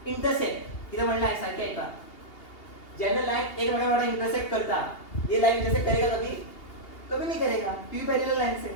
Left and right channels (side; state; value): right; late; 2.8 ms